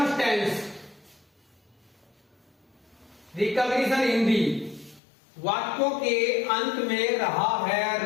tense, recognition Hindi, वाक्यों के अंत में रहा है,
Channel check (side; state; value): right; drops out; at 5.0 s